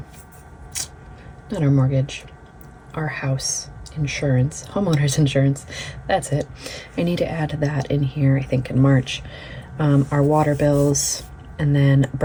mortgage, our house insurance, homeowners insurance. That's it. I need to add that in here, I think in March. Our water bills, and then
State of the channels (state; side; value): identical; both; correlation 1.00